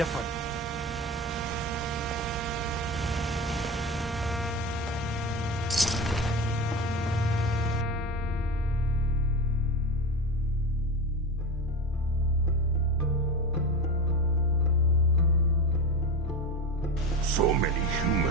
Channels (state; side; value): normal; both; correlation 0.24